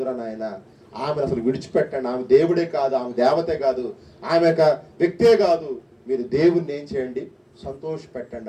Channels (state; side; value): identical; both; correlation 1.00